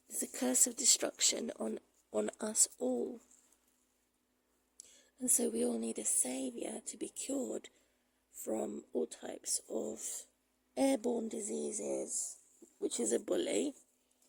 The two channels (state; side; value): identical; both; correlation 1.00